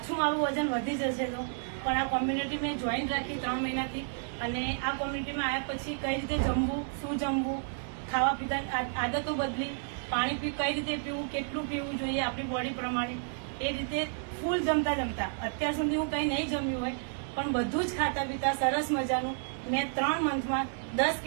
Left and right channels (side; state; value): left; silent; digital silence